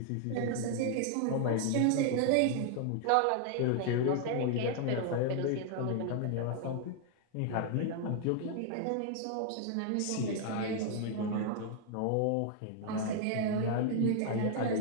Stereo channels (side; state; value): both; different; correlation 0.00